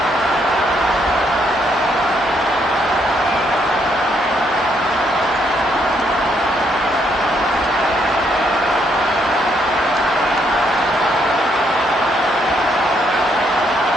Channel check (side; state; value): both; normal; correlation 0.73